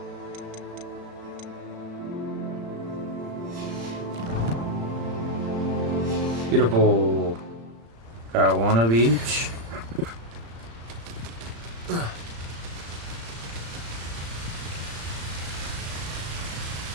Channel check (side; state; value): left; late; 35 ms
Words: Beautiful. Got one of each.